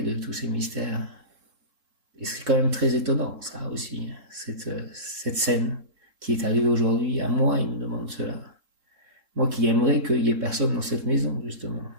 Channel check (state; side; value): late; left; 3.7 ms